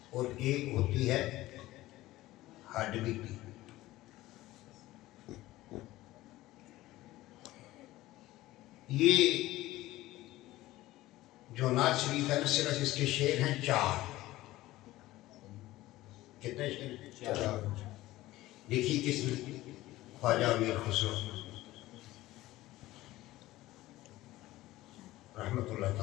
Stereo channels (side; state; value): right; quieter; 16.9 dB